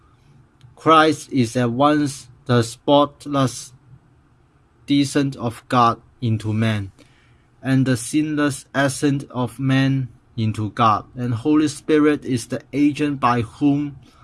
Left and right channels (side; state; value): both; identical; correlation 1.00